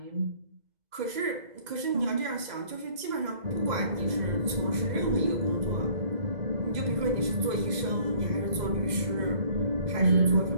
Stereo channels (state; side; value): late; left; 2.0 ms